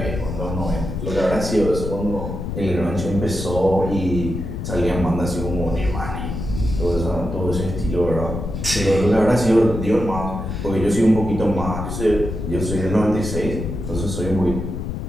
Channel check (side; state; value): left; noise; rumble, 5 dB below the sound